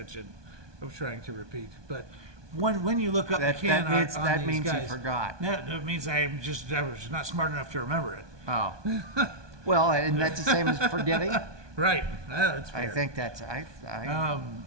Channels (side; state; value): left; late; 1.2 ms